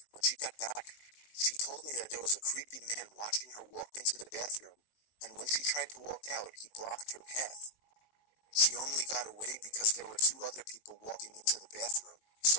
when she got back, she told me that there was a creepy man watching her walk into the bathroom, and when she tried to walk out, he blocked her path. She only got away because there were 2 other people walking into the bathroom,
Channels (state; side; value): late; right; 19 ms